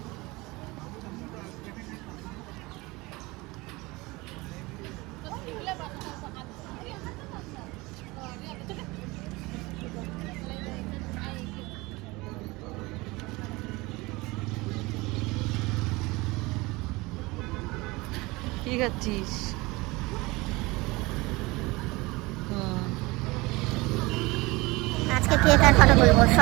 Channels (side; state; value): left; quieter; 22.7 dB